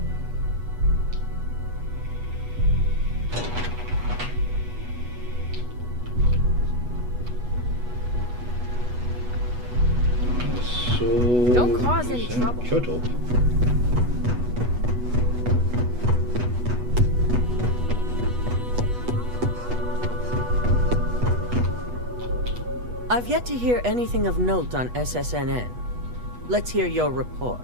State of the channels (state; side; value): late; left; 8.2 ms